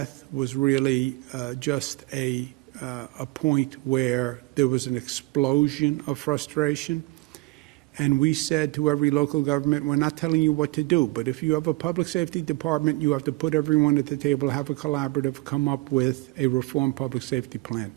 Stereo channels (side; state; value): left; quieter; 23.0 dB